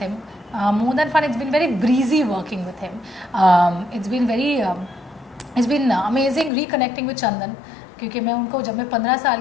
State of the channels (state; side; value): drops out; right; at 6.5 s